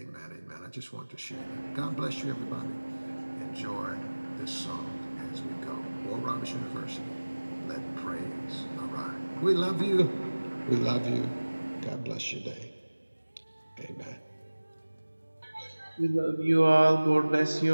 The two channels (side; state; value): both; inverted; correlation -1.00